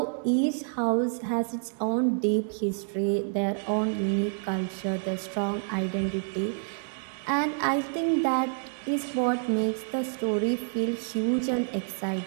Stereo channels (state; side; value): silent; left; 59 dB below the other